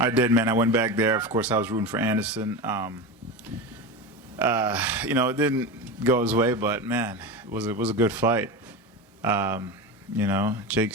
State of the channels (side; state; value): both; normal; correlation 0.22